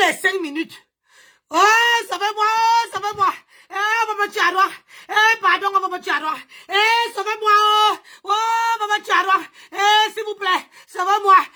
5 minutes. Oh, sauvez-moi, oh, sauvez-moi. On va me tuer à Rouen. Pardon, on va me tuer à Rouen. Sauvez-moi, oh, on va me tuer à Rouen. S'il vous plaît, sauvez-moi.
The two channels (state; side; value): identical; both; correlation 1.00